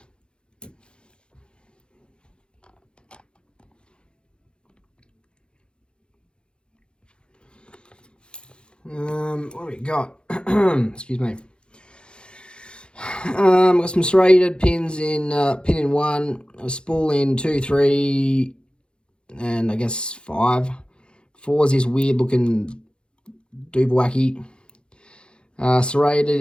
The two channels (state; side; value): late; right; 0.053 ms